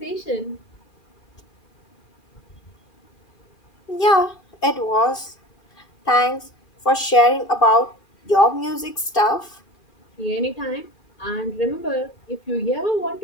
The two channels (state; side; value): late; right; 2.4 ms